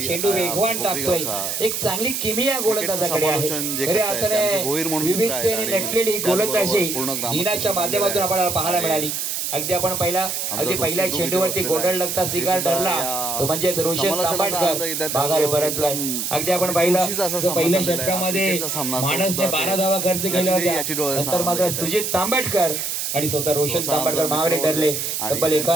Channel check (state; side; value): noise; right; hiss, 2 dB below the sound